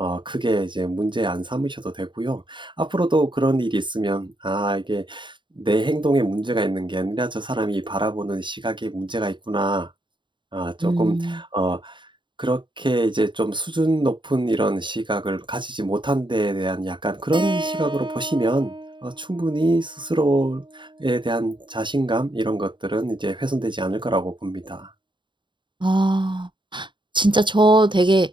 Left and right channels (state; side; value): late; left; 0.23 ms